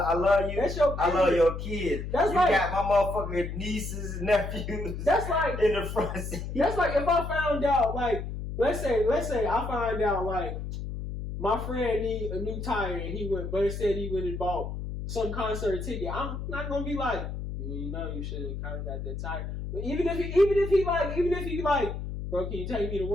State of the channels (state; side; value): noise; left; hum, 6 dB below the sound